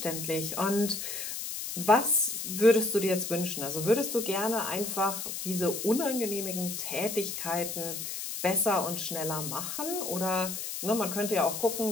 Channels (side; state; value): left; noise; hiss, 5 dB below the sound